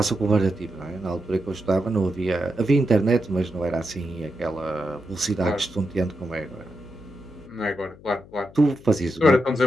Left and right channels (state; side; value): noise; left; hum, 21 dB below the sound